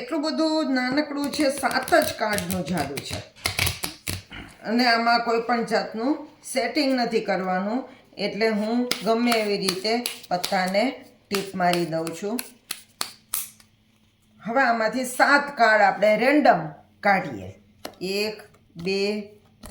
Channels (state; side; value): identical; both; correlation 1.00